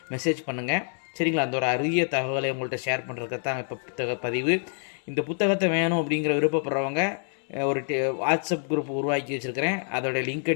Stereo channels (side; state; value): right; silent; 60 dB below the other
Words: மெசேஜ் பண்ணுங்கள். சரிங்களா? அந்த ஒரு அரிய தகவலை உங்கள்கிட்ட ஷேர் பண்ணுறதுக்கு தான் இப்போ புத்தக பதிவு. இந்த புத்தகத்தை வேணும் அப்படிங்கிற விருப்பப்படுறவங்க ஒரு வாட்ஸ்அப் குரூப் உருவாக்கி வச்சுருக்கிறேன். அதோடய லிங்க்கை